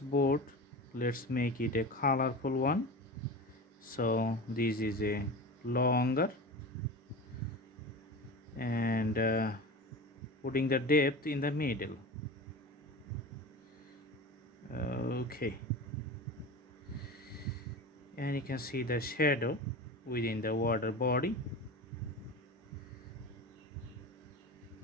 let's make it a colorful one. So this is a longer and putting the depth in the middle. Okay, and you can see the shadow within the water body.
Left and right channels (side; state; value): both; normal; correlation 0.29